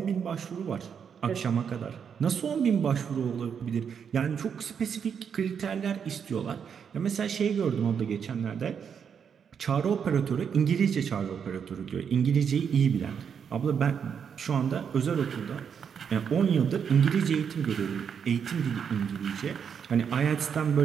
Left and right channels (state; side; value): quieter; left; 7.2 dB